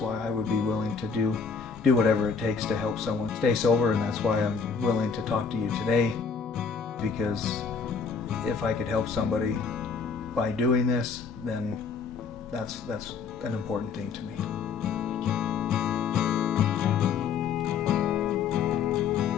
I would be willing to do whatever it takes to help someone stay sober, and that's why I'm willing to talk to you today, because if I could help somebody by doing this, then that's an important thing to me.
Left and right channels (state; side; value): quieter; right; 5.7 dB